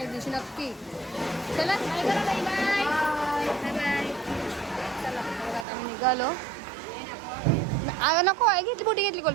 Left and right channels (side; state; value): left; drops out; at 5.7 s